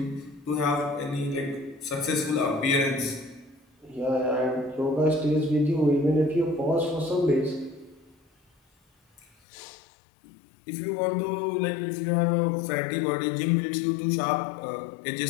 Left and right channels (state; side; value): drops out; right; at 9.2 s